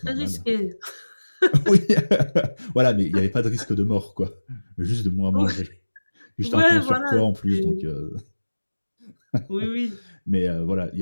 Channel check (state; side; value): inverted; both; correlation -1.00